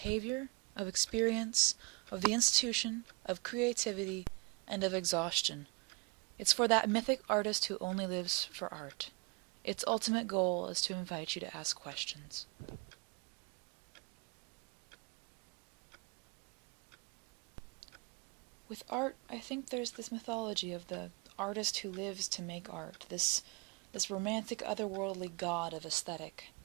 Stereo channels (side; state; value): left; quieter; 30.2 dB